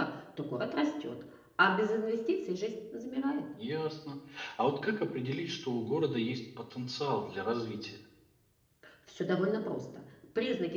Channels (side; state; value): both; identical; correlation 1.00